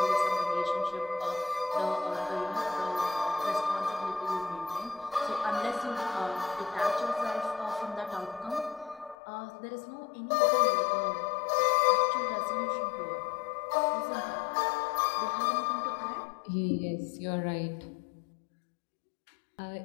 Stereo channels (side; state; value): right; drops out; at 9.2 s